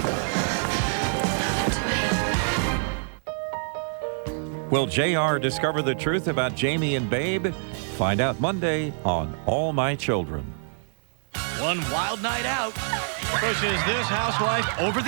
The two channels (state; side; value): silent; left; digital silence